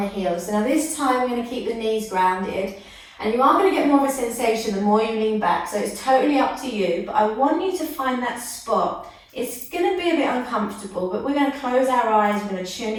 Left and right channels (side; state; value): both; identical; correlation 1.00